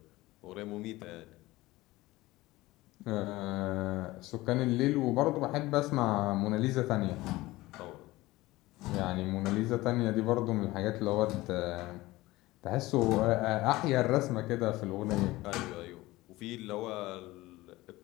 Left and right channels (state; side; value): quieter; right; 18.9 dB